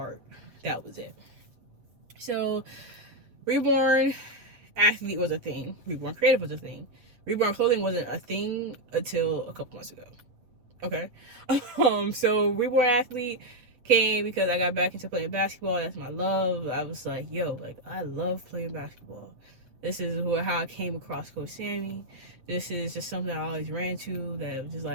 that was it. So Reborn Athlete was a thing. Reborn Creative was a thing. Reborn Clothing wasn't a thing until a couple months ago. Okay. So Reborn Athlete came because I got back into playing basketball. That's my love. I was like, yo, like, I love playing basketball. This is how I came across Coach Sammy. This is just something I always ran to that was just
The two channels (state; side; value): late; left; 8.3 ms